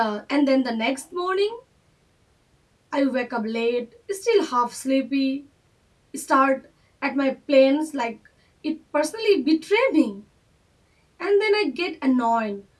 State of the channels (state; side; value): identical; both; correlation 1.00